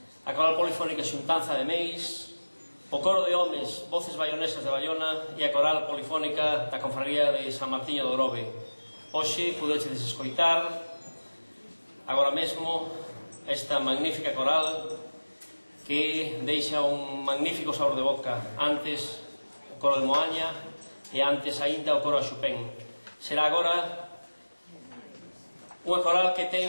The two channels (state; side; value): inverted; both; correlation -1.00